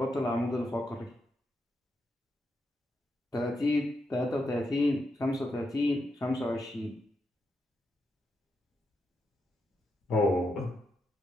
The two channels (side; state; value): both; normal; correlation 0.83